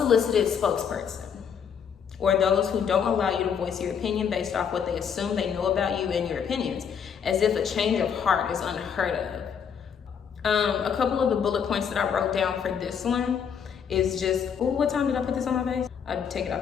spokesperson, or those who don't allow you to voice your opinion based off what they assume they know about you and your opinions, as if a change of heart is unheard of. A couple of the bullet points that I wrote down for this one is just, oh, what time did I put this on my face? I'd take it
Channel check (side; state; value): right; quieter; 7.3 dB